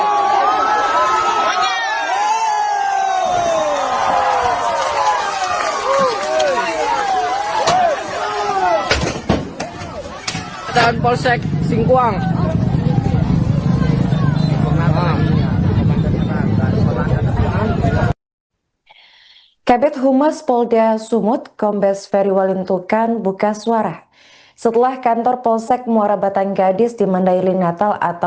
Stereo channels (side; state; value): both; identical; correlation 1.00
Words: Dan Polsek Singkuang. Kabid Humas Polda Sumut, Kombes Ferry Walintukan buka suara setelah kantor Polsek Muara Batang Gadis di Mandailing Natal